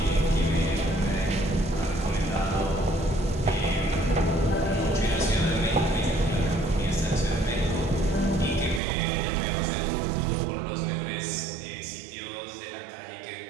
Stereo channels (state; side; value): drops out; left; at 8.8 s